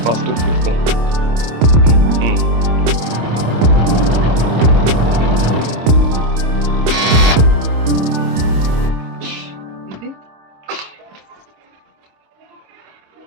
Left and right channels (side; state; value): left; late; 26 ms